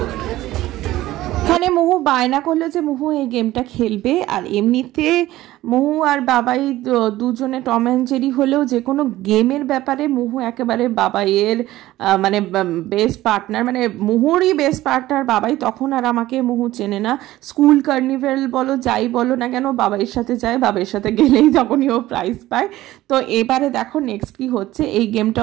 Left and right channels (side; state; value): left; quieter; 16.0 dB